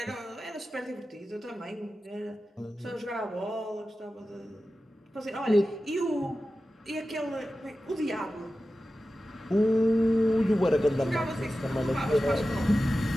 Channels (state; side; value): normal; both; correlation 0.94